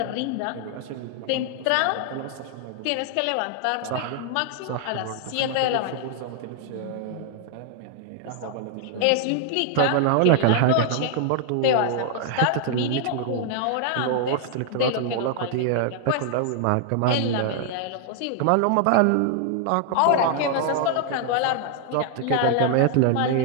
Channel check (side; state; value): both; different; correlation 0.00